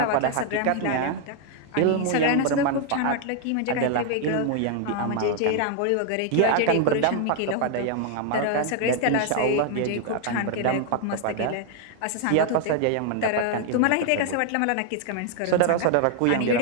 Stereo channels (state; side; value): different; both; correlation 0.00